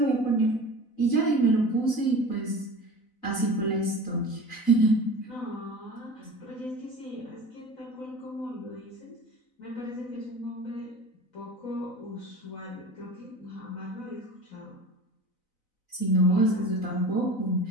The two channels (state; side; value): late; right; 4.0 ms